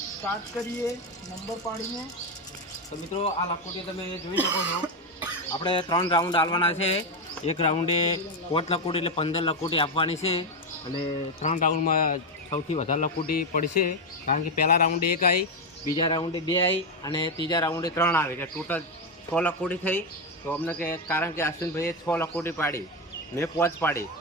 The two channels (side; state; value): both; normal; correlation 0.08